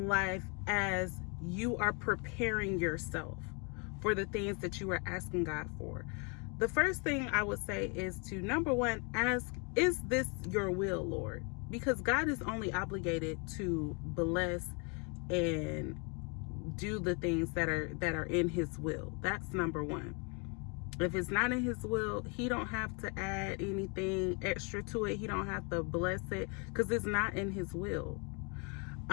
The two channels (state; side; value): quieter; right; 34.0 dB